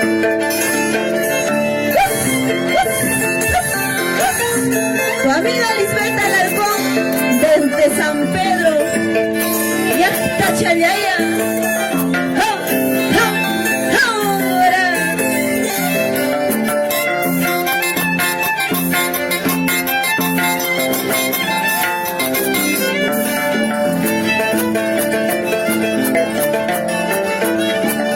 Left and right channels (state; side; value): identical; both; correlation 1.00